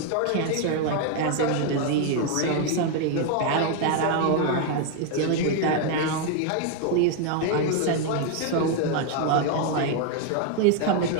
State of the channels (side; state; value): both; different; correlation 0.00